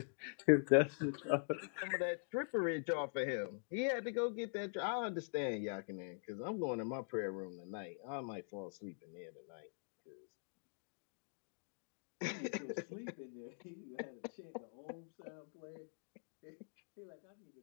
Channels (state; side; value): silent; right; digital silence